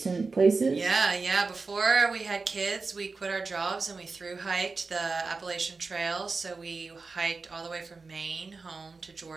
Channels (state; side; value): quieter; left; 4.1 dB